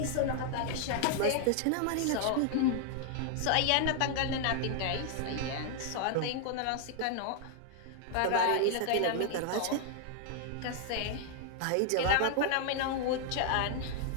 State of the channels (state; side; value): different; both; correlation 0.00